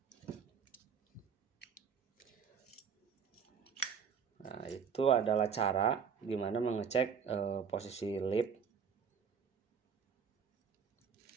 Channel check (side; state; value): left; quieter; 6.7 dB